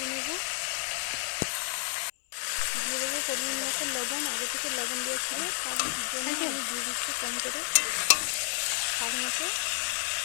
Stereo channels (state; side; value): silent; right; digital silence